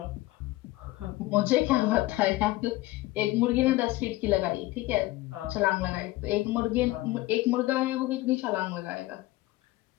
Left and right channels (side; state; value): right; quieter; 18.4 dB